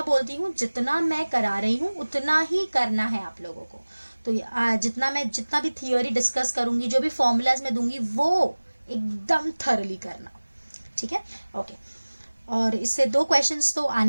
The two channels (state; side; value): inverted; both; correlation -1.00